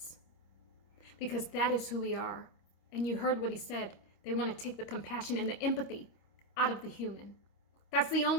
because that is who we are. And you heard what he said. They want to take the compassion and the empathy out of the human. That's the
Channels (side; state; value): right; late; 26 ms